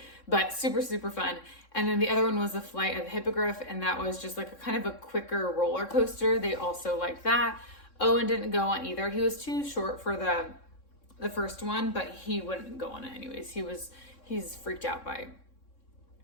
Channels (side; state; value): right; late; 3.6 ms